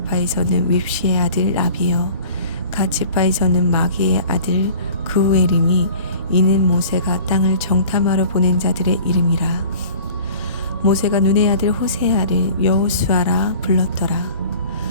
윕시의 아들 라비요. 갓 지파에서는 마기의 아들 그우엘이니 이는 모세가 땅을 정탐하러 보낸 자들의 이름이라. 모세가 눈의 아들 호세아를 여호수아라 불렀더라.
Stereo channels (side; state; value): both; inverted; correlation -0.45